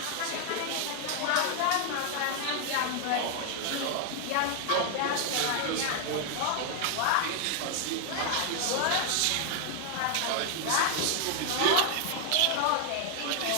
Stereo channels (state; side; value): different; both; correlation 0.00